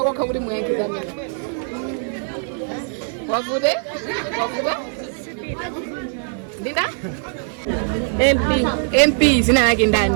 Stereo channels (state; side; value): silent; left; 65 dB below the other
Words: kuti muyankiza mene wavude Dinda? MP zina yake